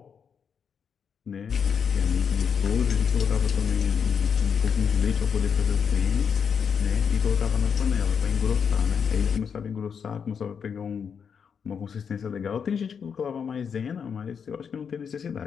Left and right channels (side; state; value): right; quieter; 6.8 dB